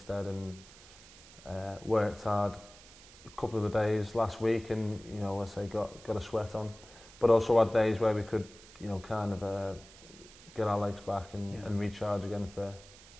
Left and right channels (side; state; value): right; noise; hiss, 20 dB below the sound